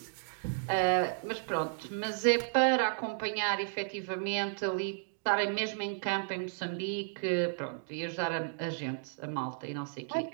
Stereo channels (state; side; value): silent; left; digital silence